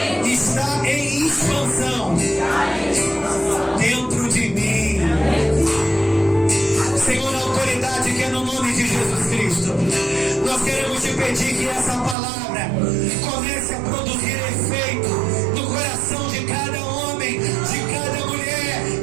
está em expansão dentro de mim. Senhor, a autoridade que é no nome de Jesus Cristo, nós queremos te pedir que essa palavra comece a produzir efeito no coração de cada homem, de cada mulher,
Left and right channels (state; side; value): drops out; left; at 12.2 s